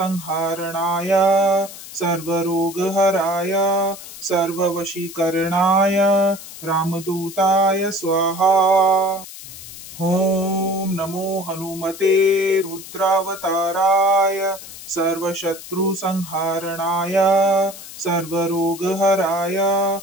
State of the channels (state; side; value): noise; left; hiss, 14 dB below the sound